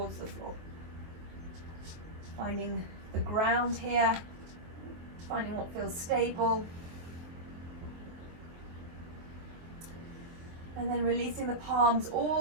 the floor. Finding the ground here, finding what feels stable. And then releasing the palms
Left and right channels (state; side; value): late; left; 23 ms